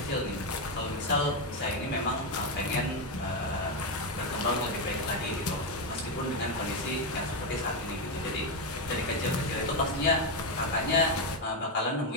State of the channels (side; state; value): both; normal; correlation 0.07